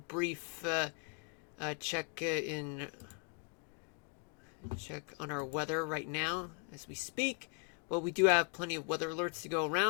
brief check on our weather right now as we speak. Well, we do have plenty of weather alerts to go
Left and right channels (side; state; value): right; quieter; 36.7 dB